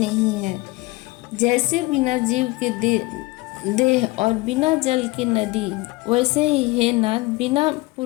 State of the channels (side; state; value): right; quieter; 21.6 dB